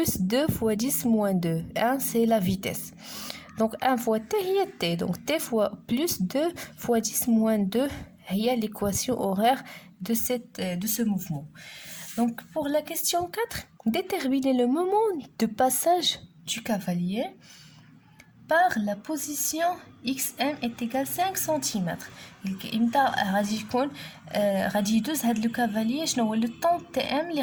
2 fois 10 moins 2. 1 c'est la vitesse. Donc 1 fois t هي t. Donc t fois plus 2 fois 10 moins 2 هي l'équation horaire de ce mouvement. Donc pour la question 4, déterminez le moment de passage du cavalier par la position xm est égal 5 cm. امتى غادي يكون غادي يدوز هاد لو كافاليي شنو هو لو طون تي ام اللي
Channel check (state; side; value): identical; both; correlation 1.00